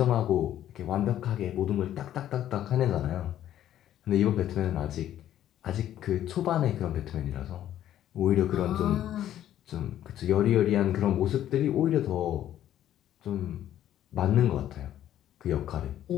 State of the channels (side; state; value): right; quieter; 11.8 dB